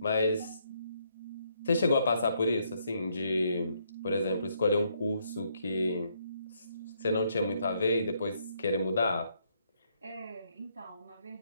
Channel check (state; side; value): inverted; both; correlation -0.72